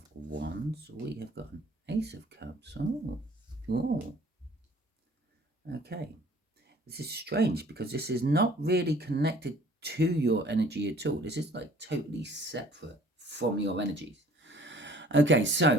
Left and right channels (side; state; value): both; normal; correlation 0.54